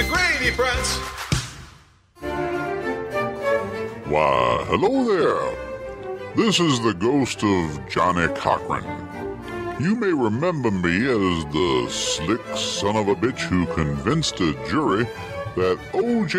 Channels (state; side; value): identical; both; correlation 1.00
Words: Grady prance. Why, hello there. This is the ghost of Johnny Cochran. You may remember me as the slick son of a bitch who convinced a jury that